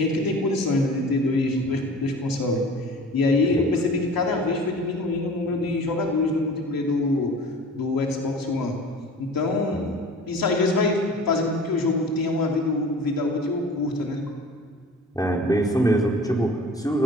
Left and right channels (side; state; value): both; normal; correlation 0.42